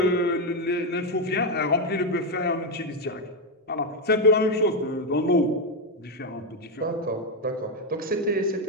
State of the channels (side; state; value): both; normal; correlation 0.05